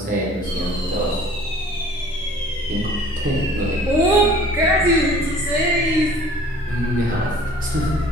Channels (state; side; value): normal; both; correlation 0.50